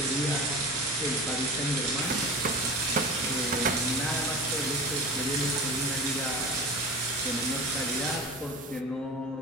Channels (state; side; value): normal; both; correlation 0.33